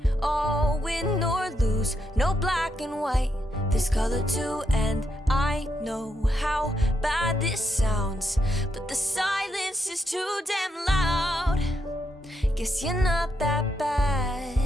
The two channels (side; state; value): both; normal; correlation 0.81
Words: all win or lose, no black and white, there's color too. And I know how bad this sounds, but the silence is too damn loud. Guess you're not that bad.